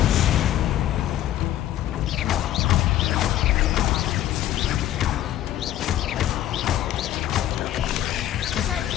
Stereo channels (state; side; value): quieter; right; 12.7 dB